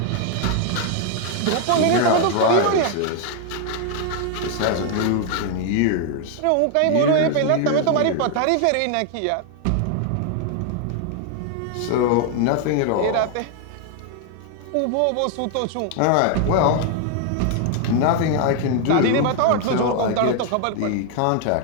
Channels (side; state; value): both; different; correlation 0.00